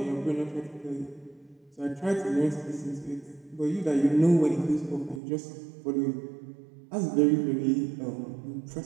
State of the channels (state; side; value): drops out; left; at 5.2 s